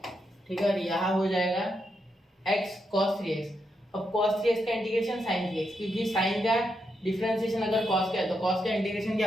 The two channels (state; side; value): normal; both; correlation 0.82